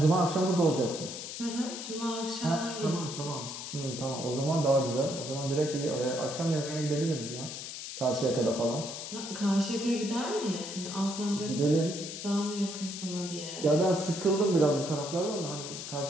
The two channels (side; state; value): left; noise; hiss, 8 dB below the sound